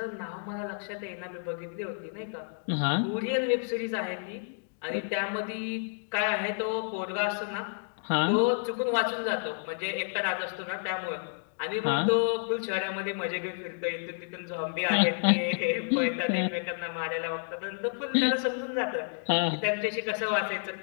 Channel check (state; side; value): silent; right; digital silence